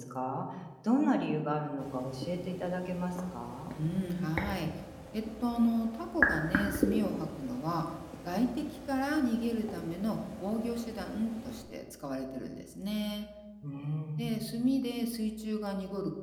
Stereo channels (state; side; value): identical; both; correlation 1.00